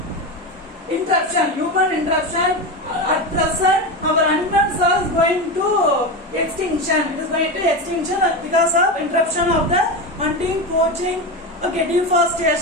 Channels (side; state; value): both; normal; correlation 0.18